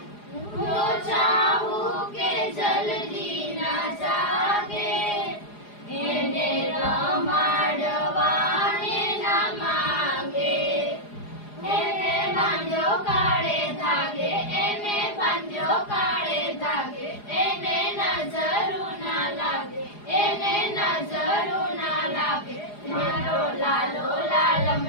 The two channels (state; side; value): late; right; 4.8 ms